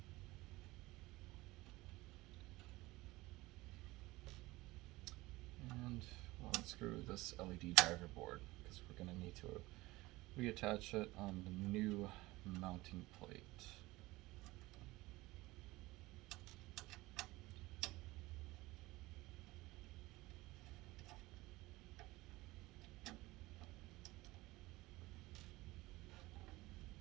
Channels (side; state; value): left; quieter; 20.0 dB